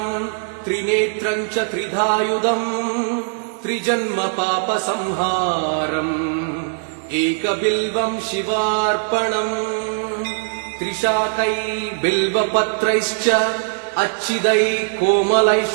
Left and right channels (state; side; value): silent; left; digital silence